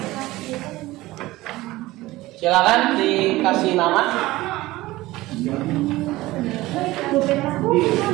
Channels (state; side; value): quieter; left; 18.4 dB